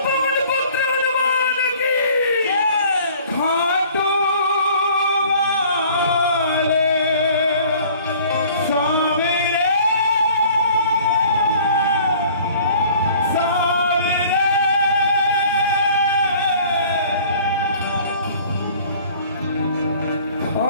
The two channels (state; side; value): inverted; both; correlation -0.51